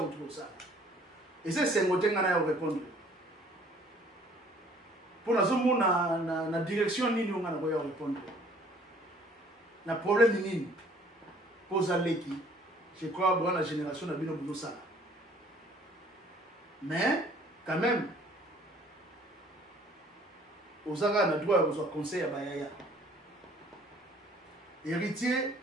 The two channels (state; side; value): normal; both; correlation 0.56